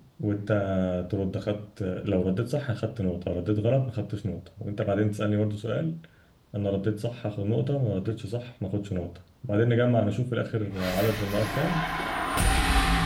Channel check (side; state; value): both; identical; correlation 1.00